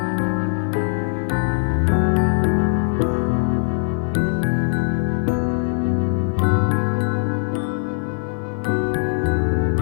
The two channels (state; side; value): silent; right; 58 dB below the other